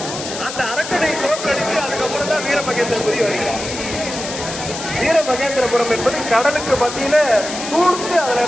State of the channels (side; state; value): left; noise; hiss, 8 dB below the sound